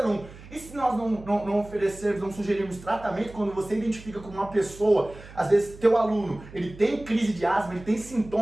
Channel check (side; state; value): right; noise; hum, 18 dB below the sound